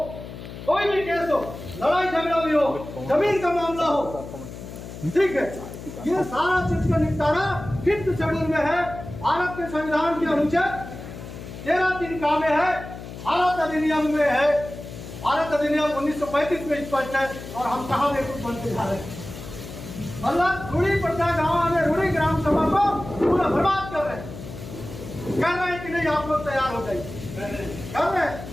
कोई भी केस हो, लड़ाई झगड़ा भी हो, जमीन का मामला हो, ठीक है। ये सारा चीज का निपटारा 5th शेड्यूल में है, भारत के संविधान के अनुच्छेद 13(3) में है, भारत अधिनियम में है। भारत अधिनियम 1935 में स्पष्ट है, और हम कहाँ में कुछ बनते जा रहे हैं। मतलब रूढ़ी पट्टा गाँव में रूढ़ी ग्राम सभा को पूरा बर्बाद कर रहे हैं, कह रहे हैं कि नहीं आप लोग तैयार हो जाइए, कर रहे हैं।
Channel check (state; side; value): noise; left; hum, 12 dB below the sound